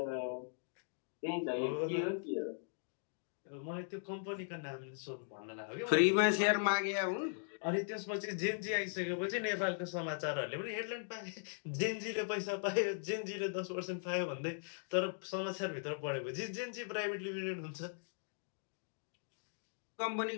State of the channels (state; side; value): silent; right; digital silence